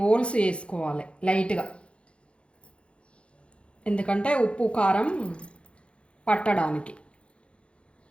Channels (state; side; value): late; right; 0.059 ms